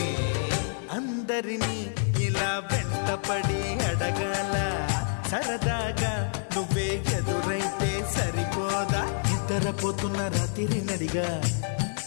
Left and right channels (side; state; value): right; silent; digital silence